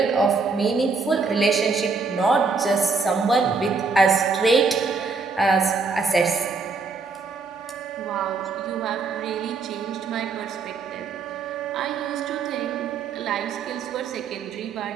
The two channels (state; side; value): quieter; left; 4.5 dB